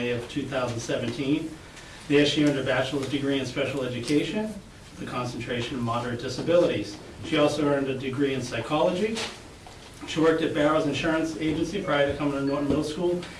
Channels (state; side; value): identical; both; correlation 1.00